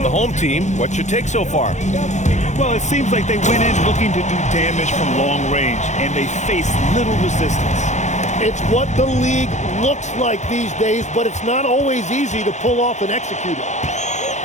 the home team, what's your take so far? Well, it seems like they went in looking to do damage from long range, and they faced little resistance. It's what the league looks like these days, but it's not always easy to pull off and execute it.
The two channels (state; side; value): late; right; 0.34 ms